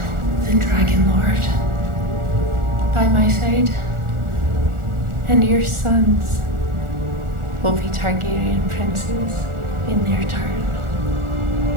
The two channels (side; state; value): left; late; 1.4 ms